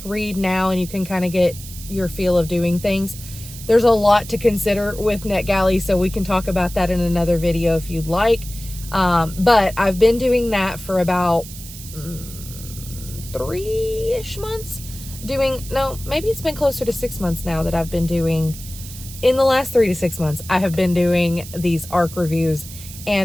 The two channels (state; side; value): noise; right; hiss, 14 dB below the sound